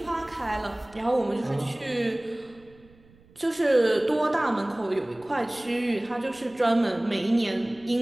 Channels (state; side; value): noise; right; rumble, 28 dB below the sound